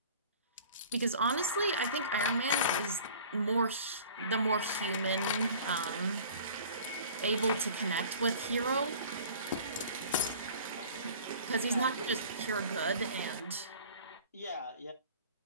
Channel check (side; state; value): both; inverted; correlation -0.45